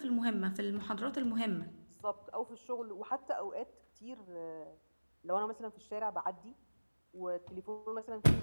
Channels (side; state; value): both; inverted; correlation -1.00